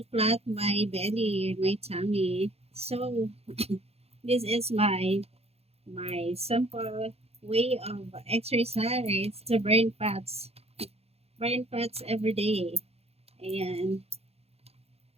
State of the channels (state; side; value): late; left; 0.29 ms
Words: flat my belly, my tummy. So this is my simple way of exercise to burn fats every day. And